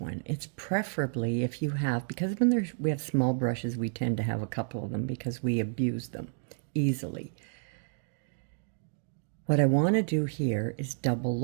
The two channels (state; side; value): silent; left; digital silence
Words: It's preferably if you have, because when we have small brushes, we tend to have a couple of them because we abuse them easily. What I want to do here is double